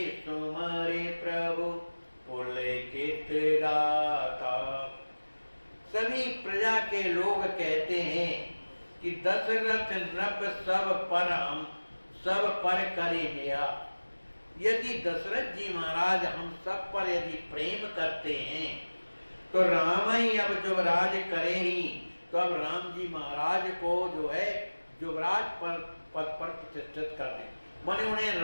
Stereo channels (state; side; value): inverted; both; correlation -1.00